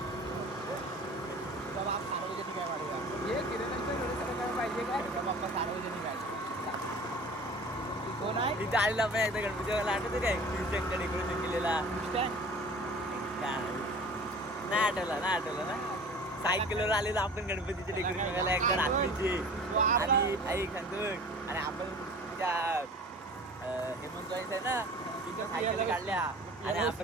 तुझा बाप सार्वजनिक आहे वाढवा हे किरणाचे डोळेसर करायला पाहिजे काय तुझा पप्पा सार्वजनिक आहे कोण आहे तिथे आलेला आपण एकदा गणपती आठवतं काय शिवशंकर डेकोरेशन केलेला नाही आठवलं ना सायकलवर आलेलो आपण गणपतीचे डेकोरेशन करायला एकदा रात्रीचे आणि ऐक आणि आपण त्या हेमंत आहे ना तिथे सायकल काढल्या आणि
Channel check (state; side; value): normal; both; correlation 0.43